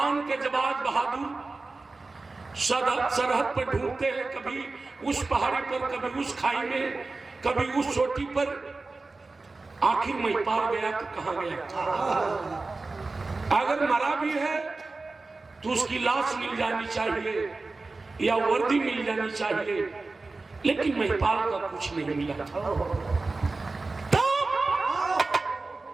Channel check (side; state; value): left; quieter; 3.6 dB